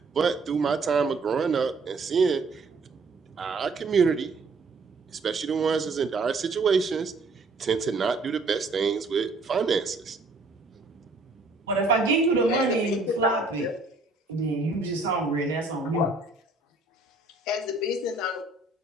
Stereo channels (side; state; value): left; quieter; 3.5 dB